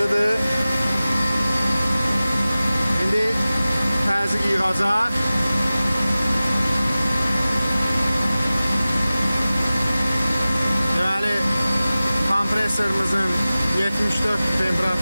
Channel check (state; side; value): inverted; both; correlation -0.97